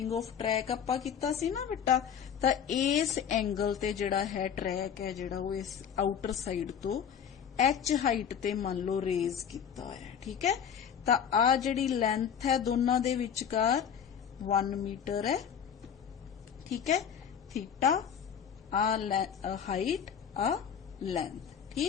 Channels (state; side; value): quieter; right; 8.0 dB